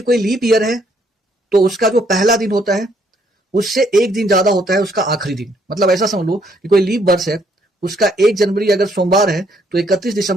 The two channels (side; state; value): both; normal; correlation 0.69